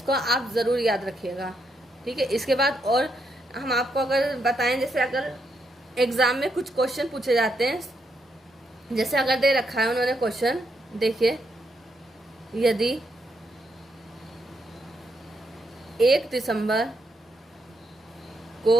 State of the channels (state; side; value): normal; both; correlation 0.79